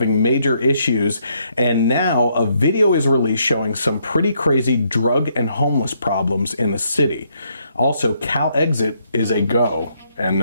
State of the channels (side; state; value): both; inverted; correlation -0.73